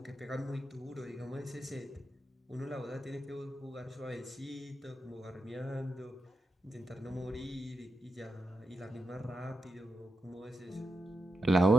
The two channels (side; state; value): both; normal; correlation 0.88